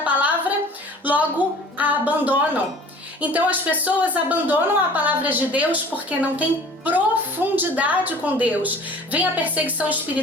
logo a abandonam. Então as pessoas abandonam a palavra de Deus porque não tem profundidade com Deus. Vem a perseguição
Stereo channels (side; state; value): both; normal; correlation 0.46